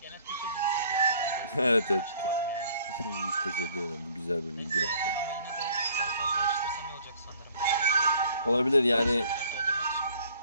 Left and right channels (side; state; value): both; inverted; correlation -0.57